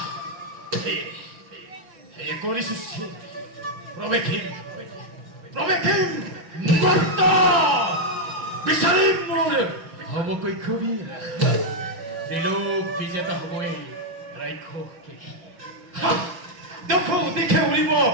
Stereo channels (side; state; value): left; late; 5.6 ms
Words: কৰিছো প্ৰৱেশিম মৰ্ত বিচাৰিম মোৰ সমকক্ষবীৰ ত্ৰিলোক বিজেতা হ'বই ৰাক্ষস কেখি দেখো দেখে উৰিব